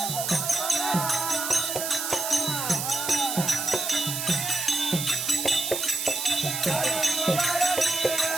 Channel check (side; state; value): right; noise; hiss, 3 dB below the sound